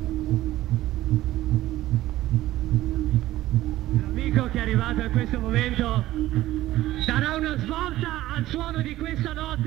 L'amico che è arrivato in questo momento darà una svolta al suono di questa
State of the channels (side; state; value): left; quieter; 15.4 dB